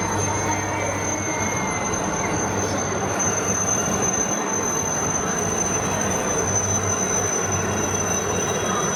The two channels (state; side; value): identical; both; correlation 1.00